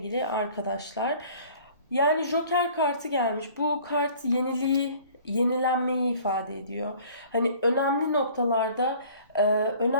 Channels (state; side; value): inverted; both; correlation -0.50